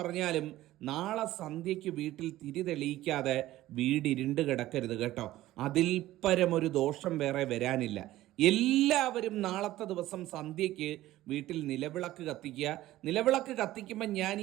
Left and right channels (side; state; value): left; quieter; 15.4 dB